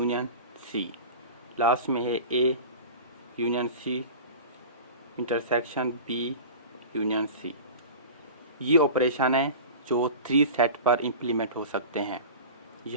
सी। लास्ट में है A union C intersection B union C. ये ऑपरेशन है जो 3 सेट पर इम्प्लीमेंट हो सकते हैं।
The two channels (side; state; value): both; inverted; correlation -0.34